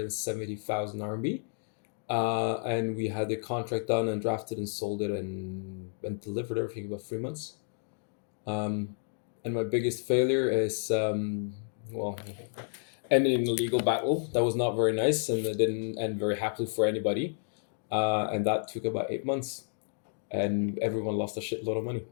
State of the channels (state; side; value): silent; right; digital silence